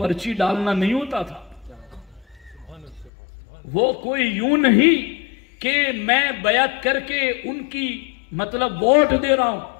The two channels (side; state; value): right; drops out; at 3.1 s